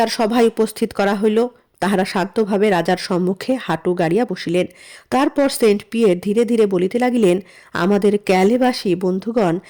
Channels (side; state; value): both; identical; correlation 1.00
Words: সভায় উপস্থিত করা হইল। তাহারা শান্তভাবে রাজার সম্মুখে হাঁটু গাড়িয়া বসিলেন। তারপর সেন্ট পিয়ের ধীরে ধীরে বলিতে লাগিলেন, আমাদের ক্যালেবাসী বন্ধুগণ